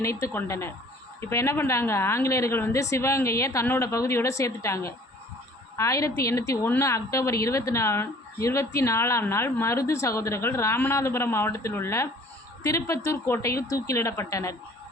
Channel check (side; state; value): both; normal; correlation 0.52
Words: கொண்டனர். இப்போ என்ன பண்ணுறாங்க, ஆங்கிலேயர்கள் சிவகங்கையை தன்னோட பகுதியோடு சேர்த்துட்டாங்க. 1801 அக்டோபர் 24ஆம் நாள் மருது சகோதரர்கள் ராமநாதபுரம் மாவட்டத்தில் உள்ள திருப்பத்தூர் கோட்டையில் தூக்கிலிடப்பட்டனர்.